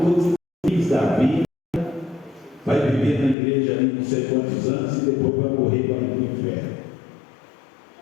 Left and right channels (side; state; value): right; drops out; at 3.4 s